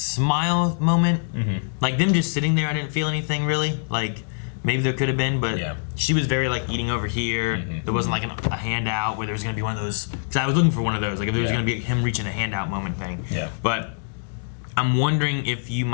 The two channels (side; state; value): right; silent; digital silence